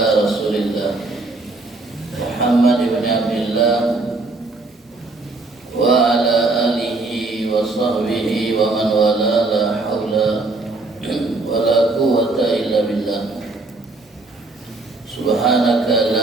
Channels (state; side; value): quieter; left; 3.3 dB